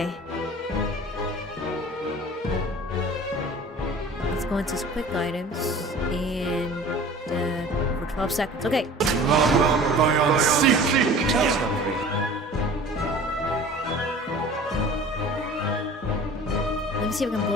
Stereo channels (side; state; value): both; normal; correlation 0.44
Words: Let's go into his quick items and for 12 seconds. Okay. Let me see if I can